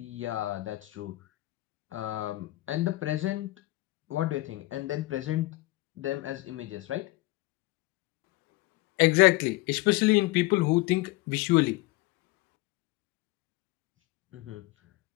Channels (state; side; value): quieter; right; 19.4 dB